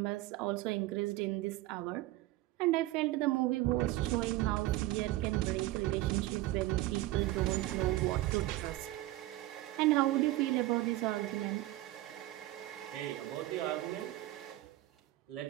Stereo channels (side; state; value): left; quieter; 16.9 dB